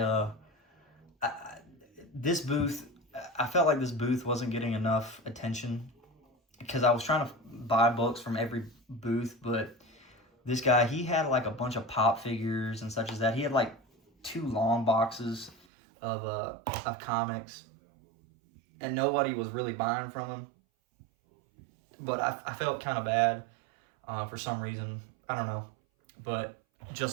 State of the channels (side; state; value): left; drops out; at 15.6 s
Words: this booth, I felt like this booth wasn't getting enough attention, because I was trying to buy books from every booth, but this guy, he had like a bunch of pop figures and such as that. He had like 2 long boxes of comics, and nobody was really buying from him. But I felt kind of bad for some reason. I don't know. But